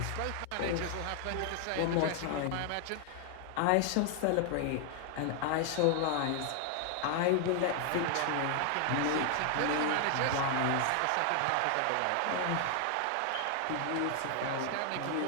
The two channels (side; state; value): both; different; correlation 0.00